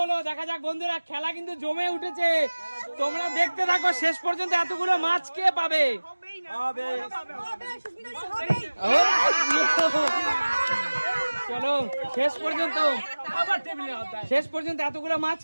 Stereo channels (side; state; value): both; inverted; correlation -1.00